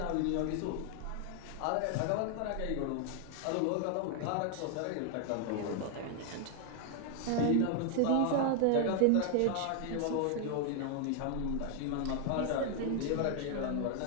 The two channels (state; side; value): different; both; correlation 0.00